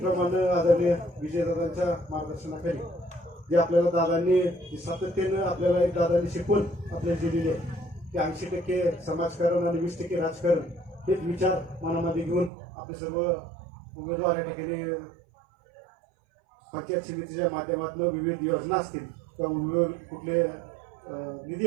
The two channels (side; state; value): left; drops out; at 12.5 s